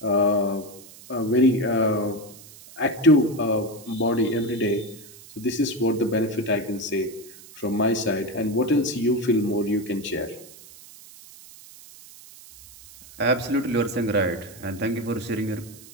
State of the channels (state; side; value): noise; right; hiss, 20 dB below the sound